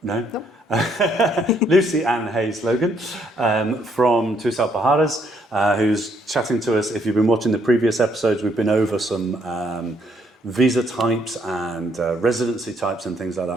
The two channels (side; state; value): both; normal; correlation 0.70